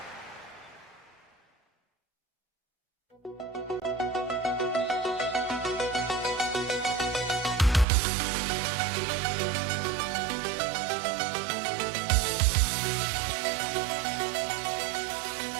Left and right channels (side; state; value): left; drops out; at 7.9 s